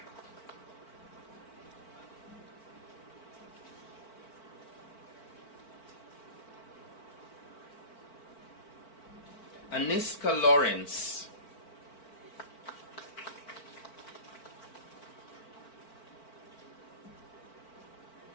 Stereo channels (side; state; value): right; late; 4.5 ms